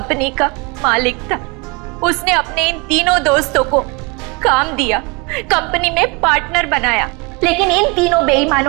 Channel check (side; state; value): left; quieter; 28.3 dB